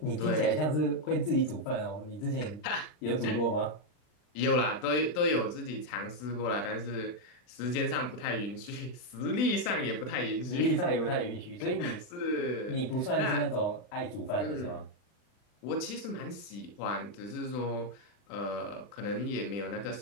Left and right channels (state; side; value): late; right; 40 ms